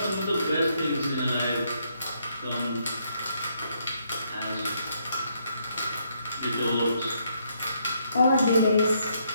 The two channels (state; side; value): inverted; both; correlation -0.73